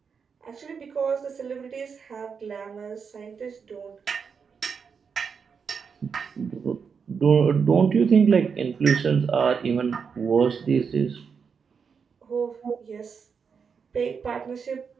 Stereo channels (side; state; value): left; quieter; 6.1 dB